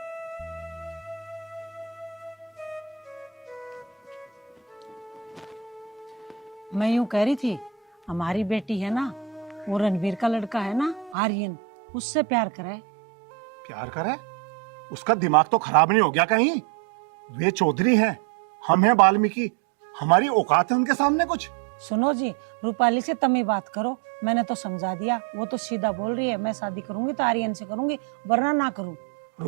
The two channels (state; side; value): drops out; left; at 11.2 s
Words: मैं यूं कह रही थी, हमारी बेटी है ना, वो रणवीर का लड़का है ना आर्यन, उससे प्यार करे। प्यार करे? उसका दिमाग तो खराब नहीं हो गया कहीं? वे चौधरी हैं, हम हैं वाल्मीकि, हमारी औकात है उनके सामने कुछ? सुनो जी, रूपाली से तम ही बात करो, मैंने तो समझा दिया, वो तो सीधा बोल रही है मैं शादी करूंगी तो आर्यन से करूंगी, वरना ना करूं।